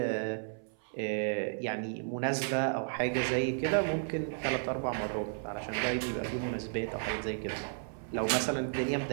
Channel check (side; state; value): left; silent; 56 dB below the other